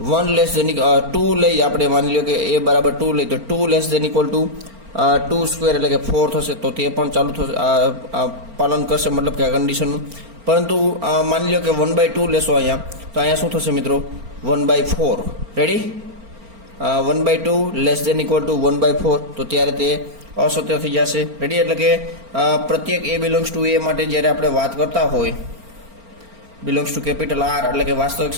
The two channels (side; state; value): left; late; 4.4 ms